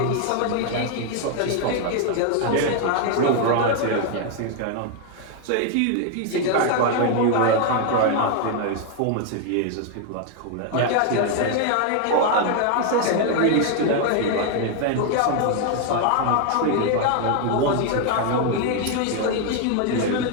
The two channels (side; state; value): both; different; correlation 0.01